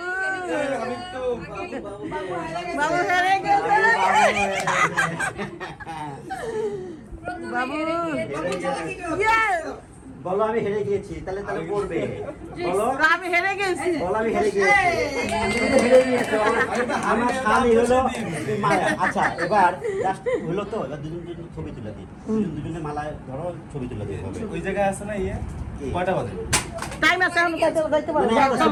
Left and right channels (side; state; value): both; identical; correlation 1.00